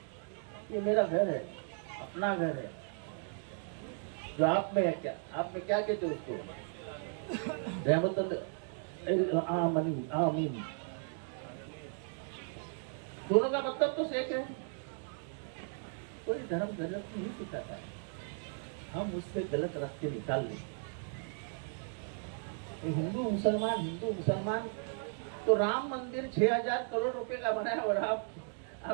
ये मेरा घर है, अपना घर है। जो आप में है, क्या आप में क्या कहते हो उसको? रहमतुल आमीन। दोनों का मतलब तो एक है। कोई धर्म गलत नहीं सिखाता है, हम उससे गलत रास्ते निकाल लें। हिंदू मुसलमान तो राम मंदिर 6000 करोड़ रुपए का बना है और आप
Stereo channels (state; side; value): silent; left; 54 dB below the other